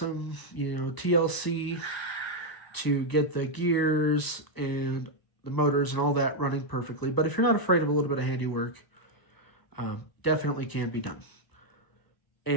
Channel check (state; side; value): late; right; 1.0 ms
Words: TLC to get the gears and the motors and all that running perfectly. But if you're not afraid of a little bit of handiwork, definitely can be done.